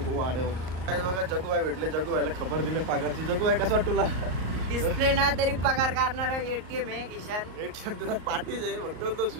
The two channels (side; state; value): left; late; 38 ms